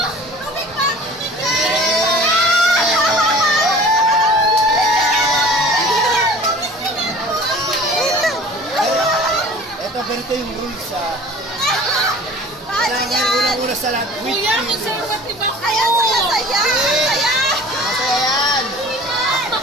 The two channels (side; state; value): both; normal; correlation 0.44